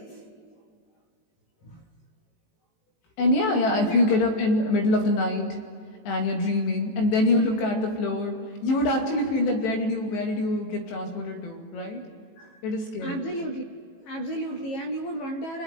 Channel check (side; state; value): right; late; 18 ms